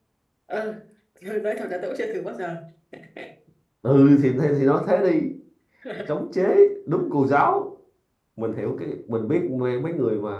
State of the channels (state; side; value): identical; both; correlation 1.00